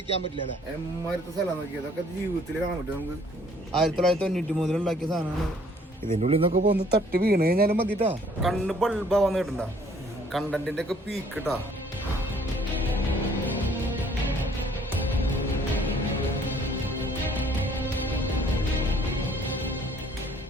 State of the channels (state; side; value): normal; both; correlation 0.60